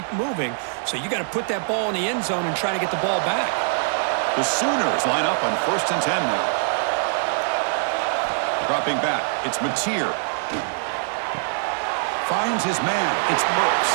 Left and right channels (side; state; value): left; silent; 57 dB below the other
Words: moving. So you got to put that ball in the end zone and try to get the ball back. The Sooners line up on 1st and 10 now. Dropping back. It's Mateer. Finds his man. It's